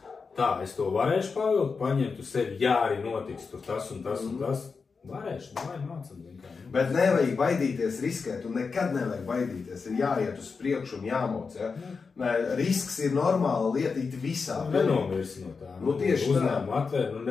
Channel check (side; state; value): right; quieter; 5.0 dB